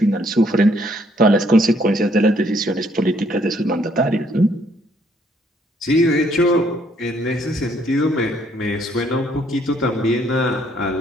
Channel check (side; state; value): both; normal; correlation 0.67